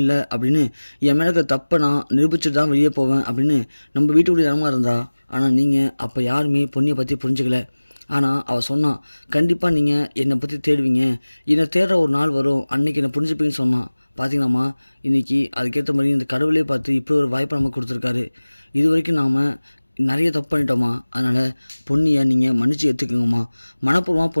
அப்படின்னு என் மேலே இருக்க தப்பை நான் நிரூபிச்சுட்டு தான் வெளியே போவேன் அப்படின்னு நம்ம வீட்டுக்குள்ளே இடமா இருந்தா, ஆனால் நீங்கள் அப்போ யாருமே பொன்னியை பற்றி புரிஞ்சுக்கல, ஆனால் அவள் சொன்னான் கண்டிப்பாக நீங்கள் என்னை பற்றி தேடுவீங்க, என்னை தேடுற ஒரு நாள் வரும், அன்றைக்கி என்னை புரிஞ்சுப்பீங்கன்னு சொன்னான், பார்த்தீங்களாம்மா இன்றைக்கி அதுக்கேற்ற மாதிரி இந்த கடவுளே பார்த்து இப்படி ஒரு வாய்ப்பை நமக்கு கொடுத்துருக்காரு, இது வரைக்கும் நாம் நிறைய தப்பு பண்ணிட்டோம்மா, அதனால் பொன்னியை நீங்கள் மன்னிச்சு ஏற்றுக்குங்கம்மா, மனப்பூர்வமாக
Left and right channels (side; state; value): both; inverted; correlation -1.00